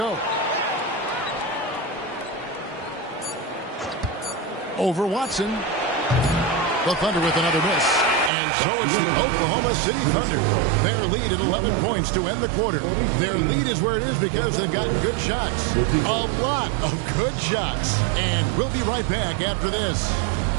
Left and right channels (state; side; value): drops out; left; at 8.3 s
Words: Over Watson. The Thunder with another miss. And so it's the Oklahoma City Thunder. Their lead at 11 points to end the quarter. Their lead is where it is because they've gotten good shots. A lot of good shots. And we'll be right back after this.